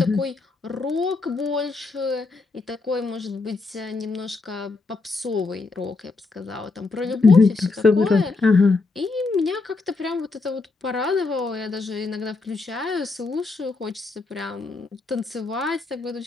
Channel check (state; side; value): quieter; right; 3.8 dB